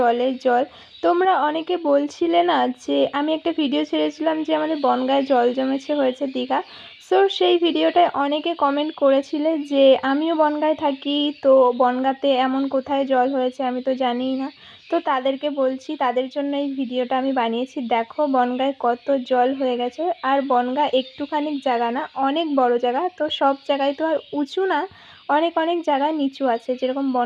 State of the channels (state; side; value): identical; both; correlation 1.00